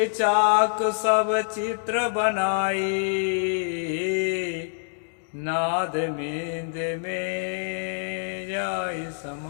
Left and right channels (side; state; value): right; silent; digital silence